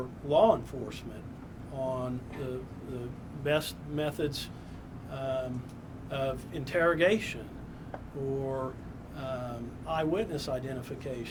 law enforcement on the best methods of interrogation or eyewitness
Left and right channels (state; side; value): identical; both; correlation 1.00